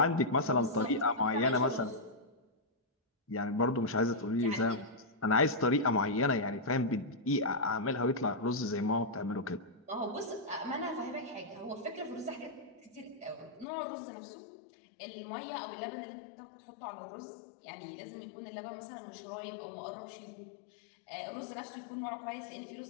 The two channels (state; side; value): drops out; right; at 13.7 s